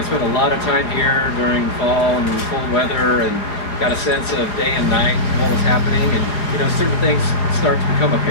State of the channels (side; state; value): right; late; 4.8 ms